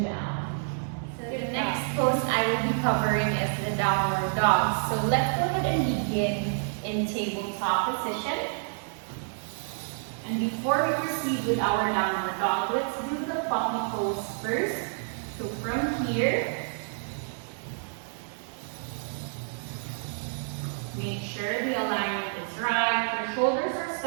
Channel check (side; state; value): left; silent; digital silence